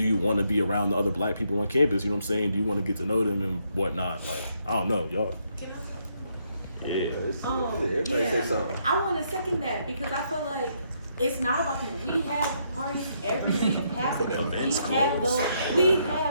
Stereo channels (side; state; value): both; inverted; correlation -0.75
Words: you want to be around the other black people on campus? You know what I'm saying? Do you want to get to know them and whatnot? Like, I don't know, y'all. Yeah. Everybody say something. I want to second that because I feel like it's not about them. We have parties every week, half of them. We